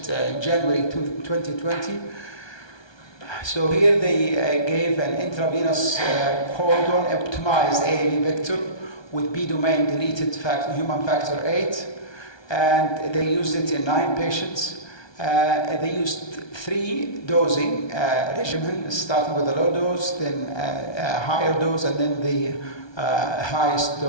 in January 2020. So here they gave an intravenous codon optimized AAV vector with B domain deleted human factor 8, and they used it in 9 patients. They used 3 dosing regimen, starting with a low dose, then a higher dose, and then the highest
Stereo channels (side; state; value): right; late; 1.2 ms